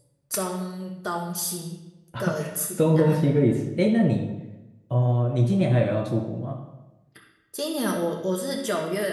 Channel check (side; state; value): both; identical; correlation 1.00